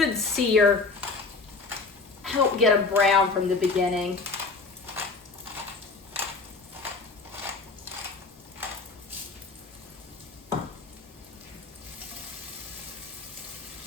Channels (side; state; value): right; quieter; 4.1 dB